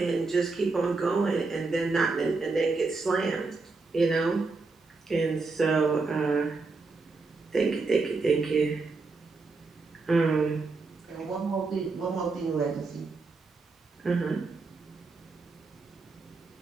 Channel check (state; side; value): quieter; left; 3.9 dB